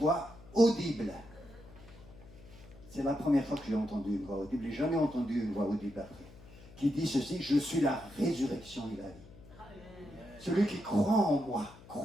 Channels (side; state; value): left; noise; hum, 20 dB below the sound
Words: audible. C'est la première fois que j'ai entendu une voix audible. Je n'ai jamais entendu une voix audible après. Qui dit ceci, je suis la résurrection et la vie. Celui qui croit en moi,